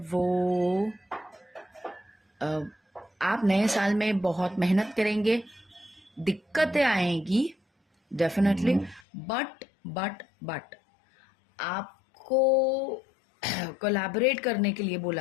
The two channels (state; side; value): drops out; right; at 9.1 s